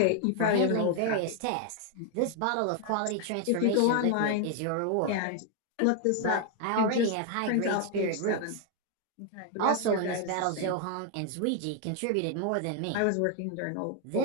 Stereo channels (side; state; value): both; different; correlation 0.00